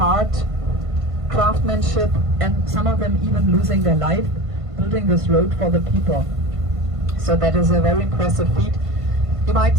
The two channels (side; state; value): left; late; 1.5 ms